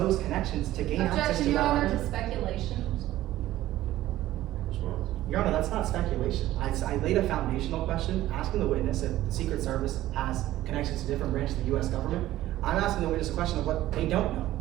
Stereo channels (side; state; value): left; quieter; 14.8 dB